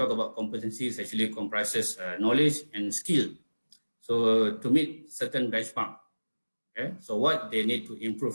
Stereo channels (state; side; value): inverted; both; correlation -1.00